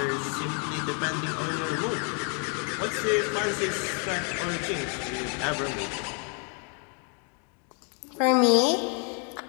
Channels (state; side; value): quieter; right; 39.1 dB